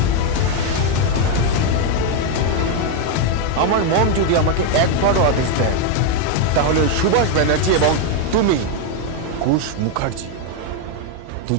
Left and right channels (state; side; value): different; both; correlation 0.01